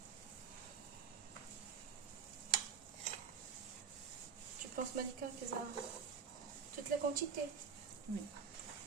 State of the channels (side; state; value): left; quieter; 6.5 dB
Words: Tu penses, Malika, que ça a toute la quantité? Oui.